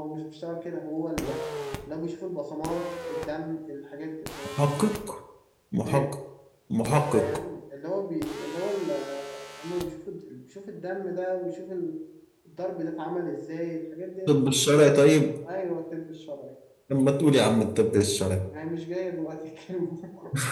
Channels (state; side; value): identical; both; correlation 1.00